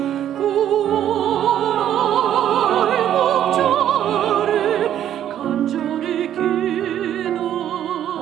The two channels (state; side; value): quieter; left; 10.8 dB